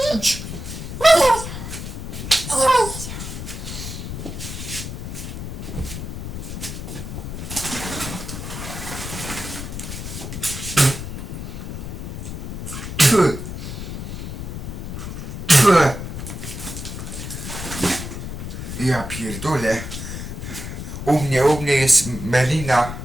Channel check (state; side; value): noise; left; rumble, 7 dB below the sound